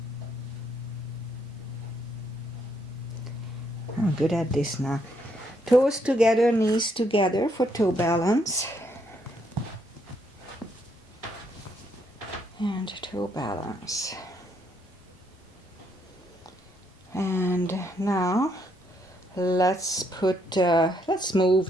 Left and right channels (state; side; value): normal; both; correlation 0.74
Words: I'm good at this now. Toes together, knees together for toe balance. And toe balance. And now let's